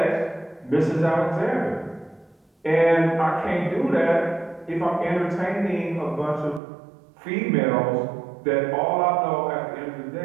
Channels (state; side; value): drops out; left; at 6.6 s